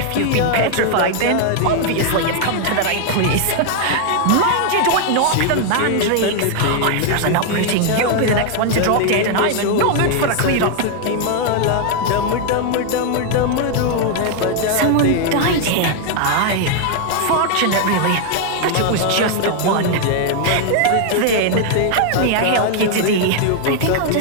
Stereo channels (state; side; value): different; both; correlation 0.00